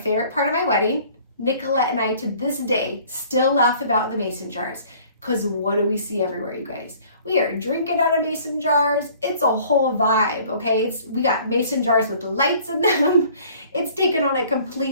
part of my wedding. Nicolette and I, to this day, still laugh about the mason jars. Because what do we see everywhere, you guys? We are drinking out of mason jars. It's a whole vibe, okay? We got mason jars with lights in them. It's taken on a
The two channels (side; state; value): both; inverted; correlation -0.53